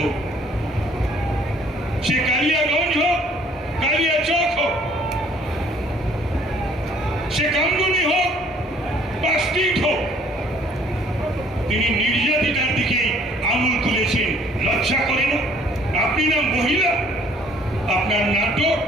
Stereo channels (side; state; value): both; normal; correlation 0.58